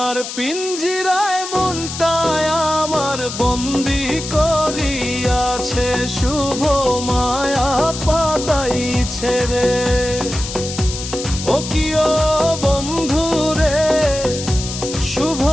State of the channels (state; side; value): noise; left; hiss, 8 dB below the sound